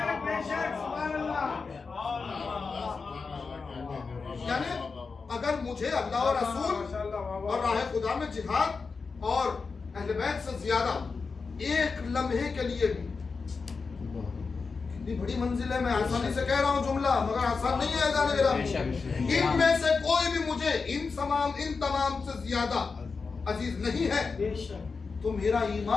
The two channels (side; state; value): right; quieter; 4.7 dB